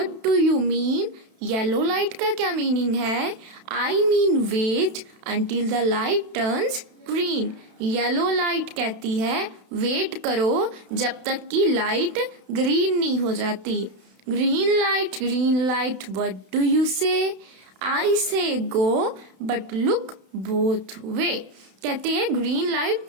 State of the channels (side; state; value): left; late; 32 ms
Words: do you mean. Yellow light का क्या मीनिंग है. I mean wait until the light turns green. Yellow light कहती है वेट करो जब तक कि लाइट ग्रीन नहीं हो जाती. Green light, what do you say? I say go, but look both way. कहते हैं ग्रीन लाइट